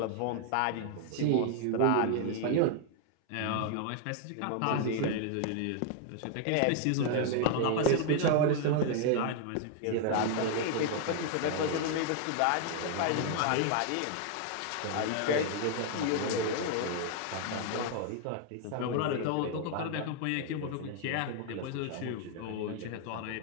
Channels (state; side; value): different; both; correlation 0.00